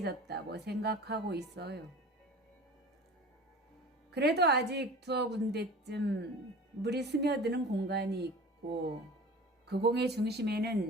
생각하고 있어요. 그래도 아직 두어 군데쯤 물이 스며드는 공간이 있고 그 공의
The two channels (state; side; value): normal; both; correlation 0.39